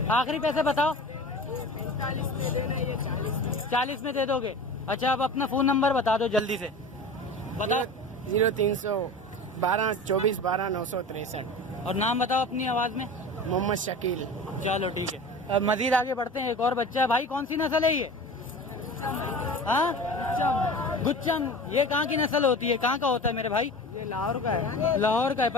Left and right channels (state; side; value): normal; both; correlation 0.35